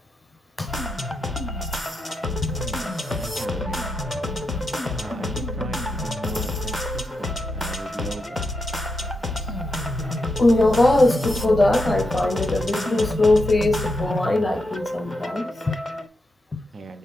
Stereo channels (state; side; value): normal; both; correlation 0.85